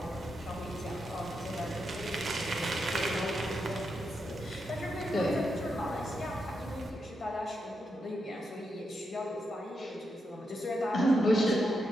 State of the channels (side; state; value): both; normal; correlation 0.84